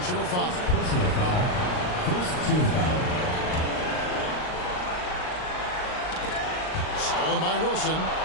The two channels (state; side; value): late; right; 39 ms